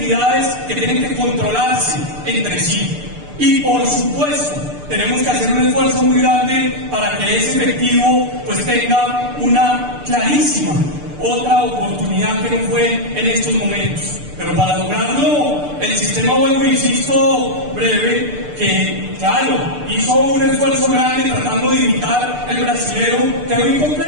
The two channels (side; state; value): left; late; 6.8 ms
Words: que tienen que controlarse entre sí. Y por supuesto, tenemos que hacer un esfuerzo muy grande para que ese efectivo pues tenga una clarísima otra oportunidad que no fue en estos momentos. Pero para lograrlo, el sistema, vuelvo insisto, breve, que claro, hizo un esfuerzo grande tratando de imitar el brasilero, quedó